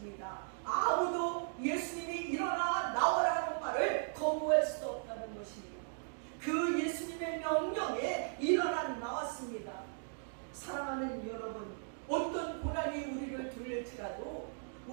아무도 예수님이 일어나 나오라 하는 말을 거부할 수 없다는 것입니다. 그 예수님의 명령에 일어나 나왔습니다. 사랑하는 여러분, 어떤 고난이 우리를 둘릴지라도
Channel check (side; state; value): left; silent; digital silence